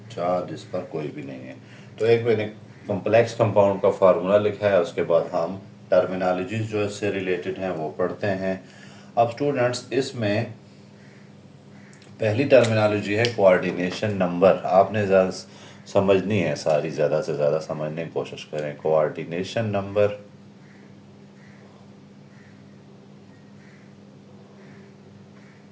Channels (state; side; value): identical; both; correlation 1.00